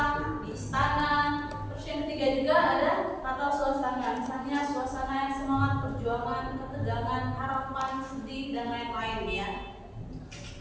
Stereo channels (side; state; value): both; identical; correlation 1.00